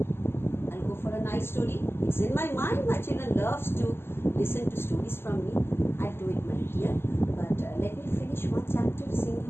I'll go for a nice story. It's in my mind. My children loves to listen to stories from me. I'll do it, my dear. But let me finish one chapter,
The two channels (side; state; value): right; late; 0.12 ms